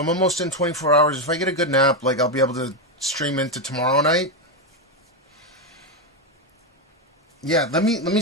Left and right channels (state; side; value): normal; both; correlation 0.07